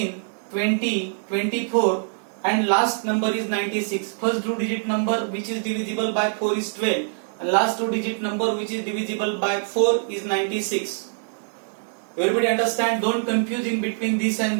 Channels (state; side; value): silent; left; digital silence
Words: 20, 24, and last number is 96. First two-digit number which is divisible by 4 is 12, and last two-digit number which is divisible by 4 is 96. Everybody understand? Don't confuse in between this and